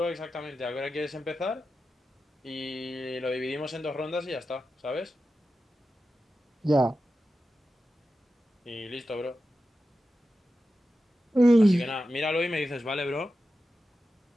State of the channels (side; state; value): both; normal; correlation 0.92